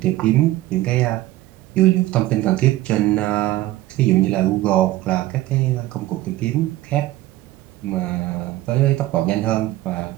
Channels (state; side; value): quieter; left; 16.3 dB